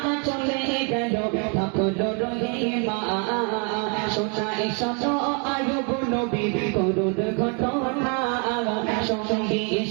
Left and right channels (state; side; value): quieter; left; 37.0 dB